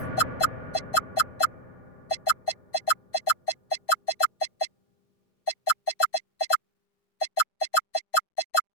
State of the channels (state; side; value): late; right; 6.5 ms